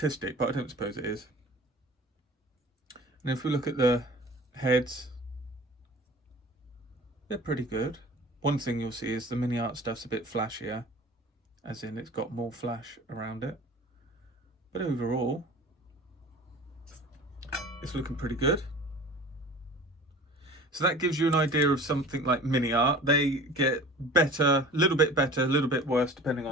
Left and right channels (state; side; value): normal; both; correlation 0.42